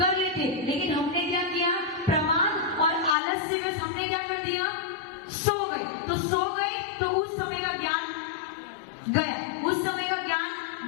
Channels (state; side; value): drops out; right; at 3.2 s